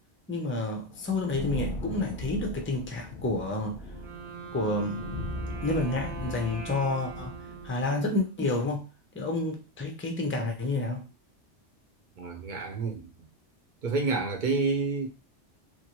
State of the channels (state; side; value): normal; both; correlation 0.14